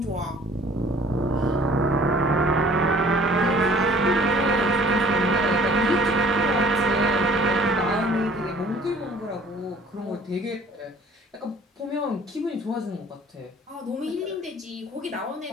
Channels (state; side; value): normal; both; correlation 0.52